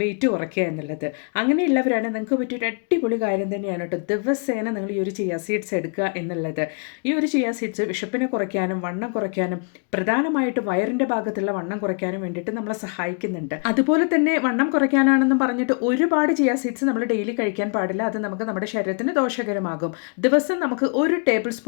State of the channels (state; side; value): quieter; right; 37.8 dB